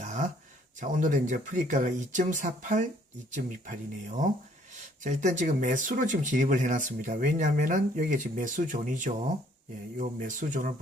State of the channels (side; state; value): both; normal; correlation 0.62